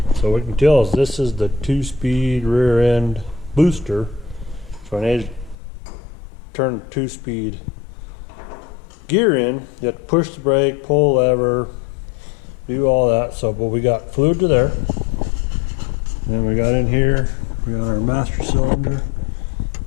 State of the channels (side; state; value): right; drops out; at 5.6 s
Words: So we can tell this is the 2-speed rear end booster. So I need to turn the 2-speed gear in. You have to push the brake, pull lever, do all that. So, but we got fluid to there. Then we got in here, we got our master cylinder,